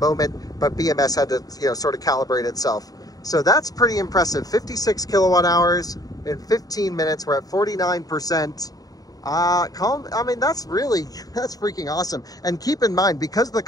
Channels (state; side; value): late; right; 0.18 ms